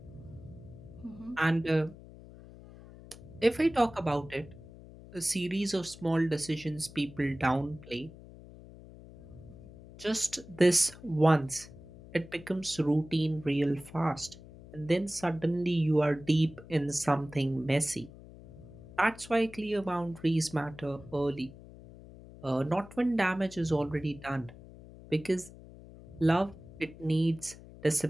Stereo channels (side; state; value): left; noise; hum, 18 dB below the sound